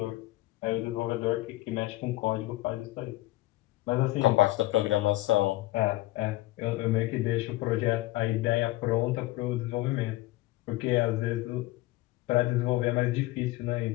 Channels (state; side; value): quieter; right; 18.4 dB